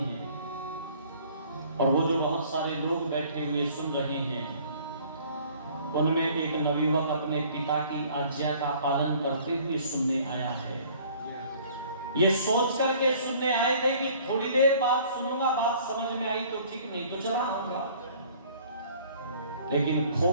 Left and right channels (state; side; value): inverted; both; correlation -0.54